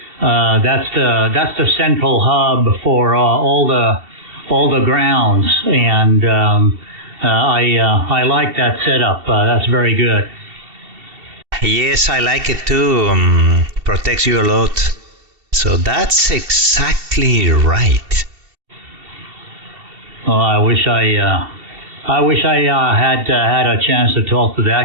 that's the central hub for all the grounds, and I like that setup. That's very good. Yes, I like it too. Protects you a lot. So that's exactly right. Oh, I wish I had a chance to talk to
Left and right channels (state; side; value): late; left; 2.7 ms